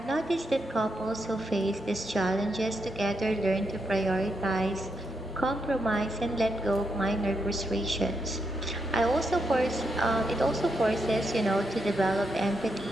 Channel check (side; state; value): both; normal; correlation 0.81